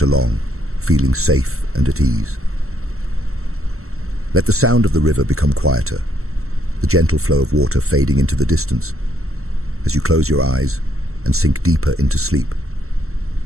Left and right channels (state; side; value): late; left; 0.63 ms